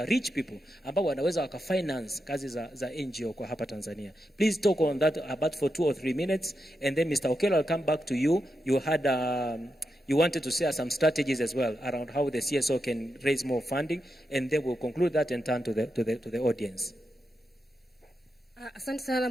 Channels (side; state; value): both; normal; correlation 0.86